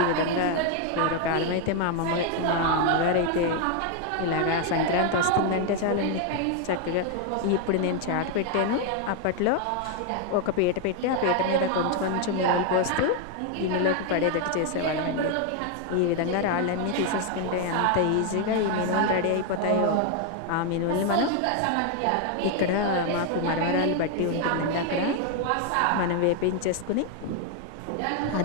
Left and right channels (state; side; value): different; both; correlation 0.01